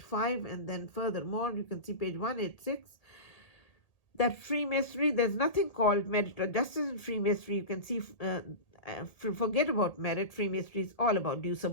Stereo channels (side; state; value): right; late; 1.8 ms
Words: And then furthermore, you can see page 186, that Freemasonry, there's nothing called merit or justice in Freemasonry. You can see, forget about merit. Freemasonry is all about due